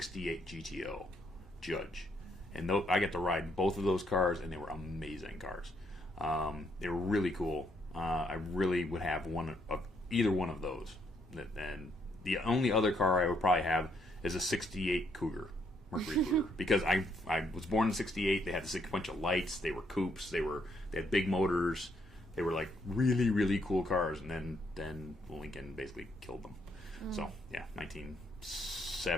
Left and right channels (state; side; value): normal; both; correlation 0.72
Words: GTO Judge, and I got to ride both of those cars, and they were amazing cars. They were really cool. I really would have either one of those. And the only other car I would probably have is a 68 Mercury Cougar, because I was born in 68. They had this bunch of lights. They were coupes. They had big motors. They were like really, really cool cars. And then Lincoln basically killed them. So yeah,